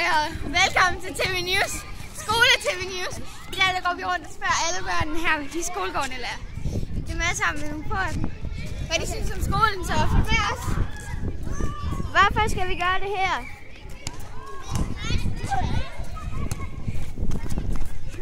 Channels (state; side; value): identical; both; correlation 1.00